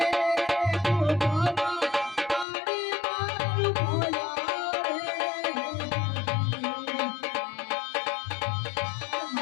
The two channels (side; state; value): right; drops out; at 2.5 s